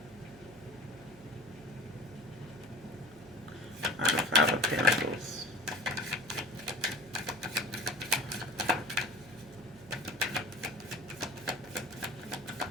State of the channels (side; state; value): right; noise; hum, 23 dB below the sound